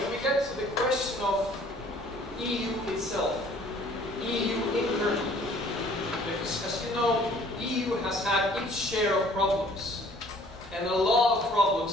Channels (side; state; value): both; normal; correlation 0.55